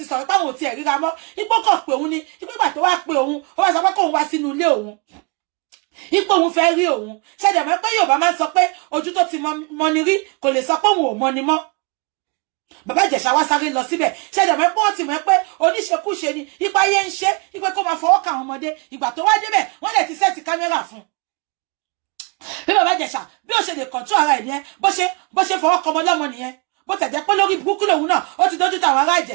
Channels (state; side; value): quieter; left; 32.4 dB